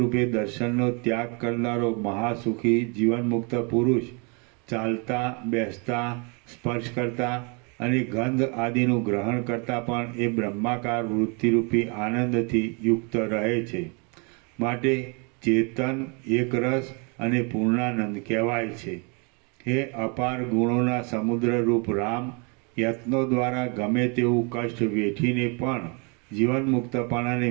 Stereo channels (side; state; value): left; quieter; 33.6 dB